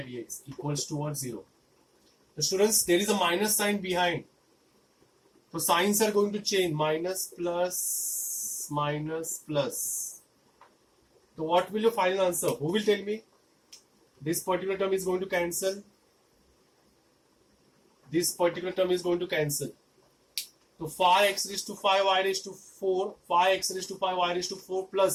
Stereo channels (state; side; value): identical; both; correlation 1.00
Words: dx equals to what? 0. So students, there is a minus sign behind. So signs are going to change. Minus, plus, minus, plus. So what will your final answer? Who will tell me? This particular term is going to cancel. This particular term is going to cancel. So 5x raised to 5 y raised to 4. 5x raised to 5 y raised to 4